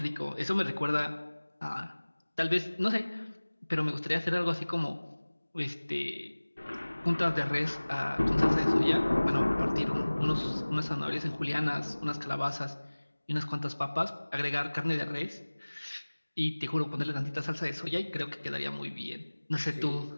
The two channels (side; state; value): both; inverted; correlation -1.00